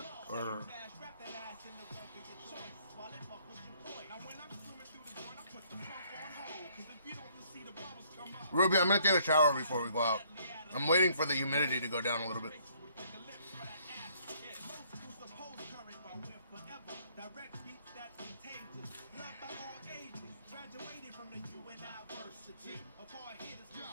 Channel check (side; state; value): both; inverted; correlation -0.64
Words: or... Ruby, I'm gonna take a shower before we go out. I'm waiting for the humidity to go down a little bit.